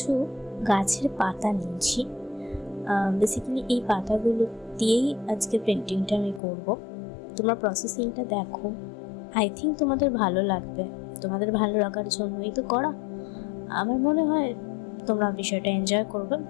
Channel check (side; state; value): right; drops out; at 6.4 s